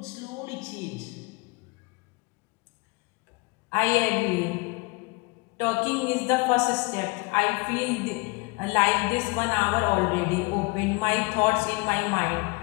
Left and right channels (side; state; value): right; quieter; 27.2 dB